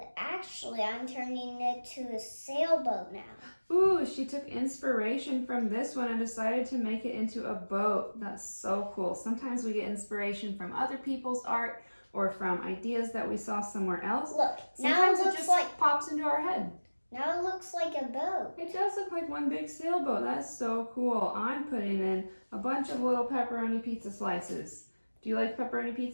actually, I'm turning it to a sailboat now. Ooh, she took inspiration from this one and decided to make it into a boat. That's so cool. Sometimes we get inspiration from other people's art or from ideas that we saw somewhere else. Look, Sometimes now it it just like pops into our head. now it looks like a boat. It does look like one big sailboat. That's so cool. I'm putting in a bunch of little pepperoni pizza slices. Do you like pepperoni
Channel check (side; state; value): both; inverted; correlation -1.00